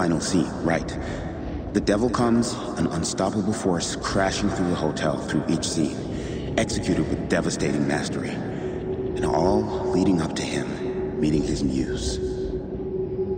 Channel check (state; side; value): identical; both; correlation 1.00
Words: scene, right. The devil comes, an unstoppable force crashing through the hotel through each scene, executed with devastating mastery. And all leading up to him meeting his muse.